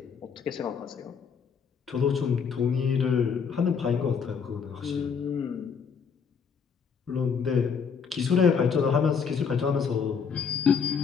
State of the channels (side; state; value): right; quieter; 6.3 dB